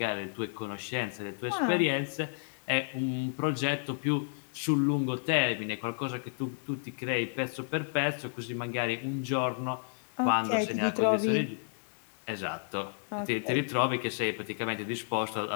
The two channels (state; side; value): silent; right; digital silence